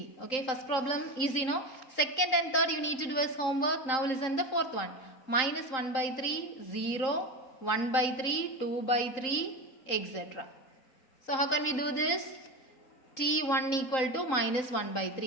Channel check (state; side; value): late; right; 3.8 ms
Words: Okay, first problem easy, no? Second and third you need to do as homework. Now listen the fourth one. Minus 1 by 3, 0, 1 by 3, 2 by 3, etc. So how can we do this? T1 equal to minus 1 by